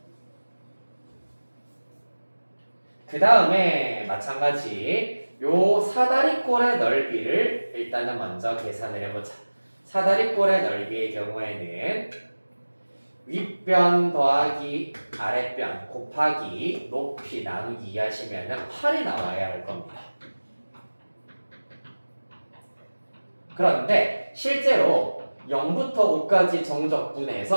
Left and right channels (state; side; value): inverted; both; correlation -1.00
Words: 그 다음에 마찬가지 요 사다리꼴의 넓이를 일단은 먼저 계산을 해보자. 사다리꼴의 넓이의 경우에는 윗변 더하기 아랫변 곱하기 높이 나누기 하시면 8이 나와야 할 겁니다. 그런데 실제로 0부터 5까지